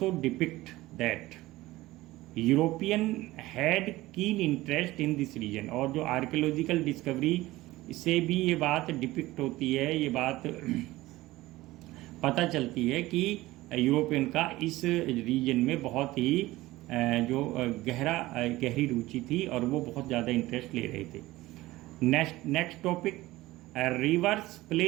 depict that European had keen interest in this region. और जो आर्कियोलॉजिकल डिस्कवरी से भी ये बात डिपिक्ट होती है, ये बात पता चलती है कि यूरोपियन का इस रीजन में बहुत ही जो गहरी रुचि थी और वो बहुत ज़्यादा इंटरेस्ट ले रहे थे. Next topic, rivers play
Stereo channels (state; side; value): quieter; left; 18.1 dB